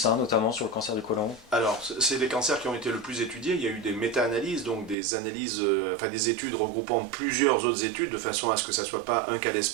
notamment sur le cancer du côlon. Alors, c'est des cancers qui ont été le plus étudiés. Il y a eu des méta-analyses, donc des analyses, des études regroupant plusieurs autres études, de façon à ce que ça ne soit pas un cas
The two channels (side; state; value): left; drops out; at 5.0 s